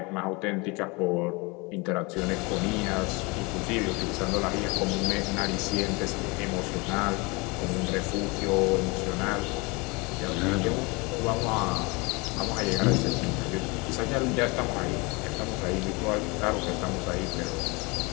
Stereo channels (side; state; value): right; quieter; 27.2 dB